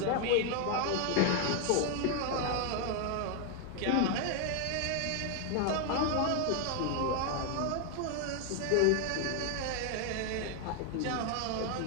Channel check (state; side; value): different; both; correlation 0.01